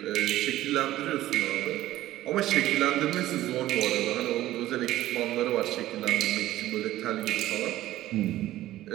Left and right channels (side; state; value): left; quieter; 14.9 dB